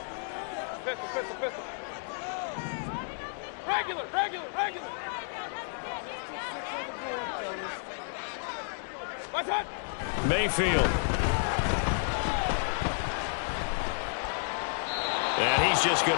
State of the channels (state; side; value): silent; right; digital silence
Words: Pistol. Regular. What's that? Mayfield. And he's just